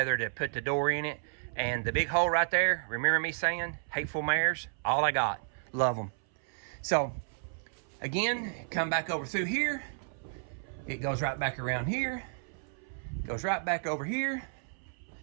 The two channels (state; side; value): silent; left; 56 dB below the other